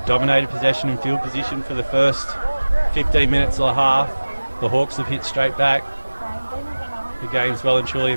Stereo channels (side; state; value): both; inverted; correlation -1.00